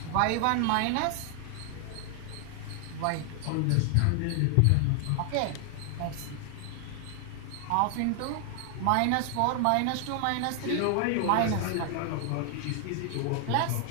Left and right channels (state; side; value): different; both; correlation 0.00